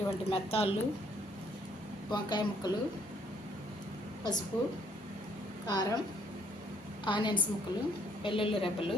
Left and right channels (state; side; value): normal; both; correlation 0.66